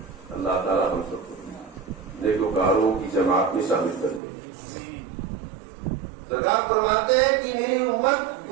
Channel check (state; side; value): drops out; left; at 4.2 s